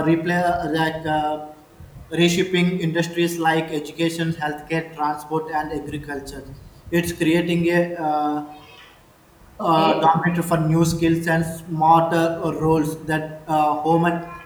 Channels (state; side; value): identical; both; correlation 1.00